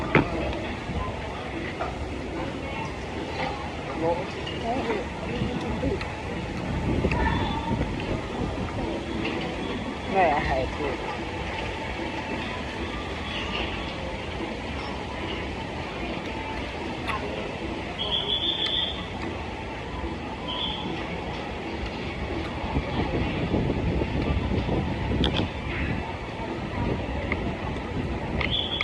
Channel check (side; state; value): both; identical; correlation 1.00